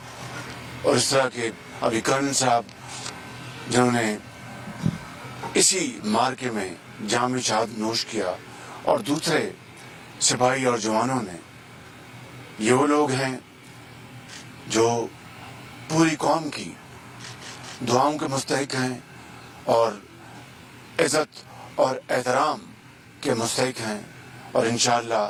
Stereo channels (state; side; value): identical; both; correlation 1.00